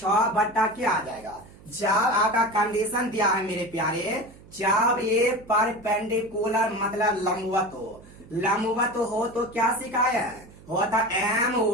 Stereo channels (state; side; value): noise; right; hum, 22 dB below the sound